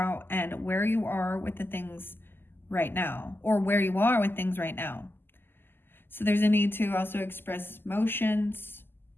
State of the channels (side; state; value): right; late; 0.10 ms